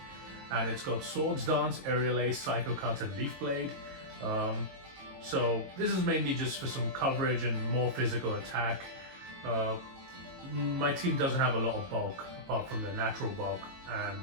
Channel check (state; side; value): late; left; 22 ms